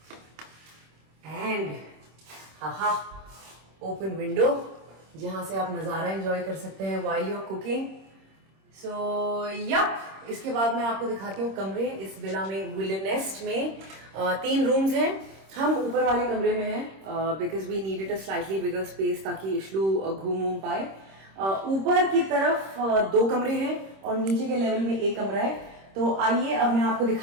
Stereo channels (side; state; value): left; late; 26 ms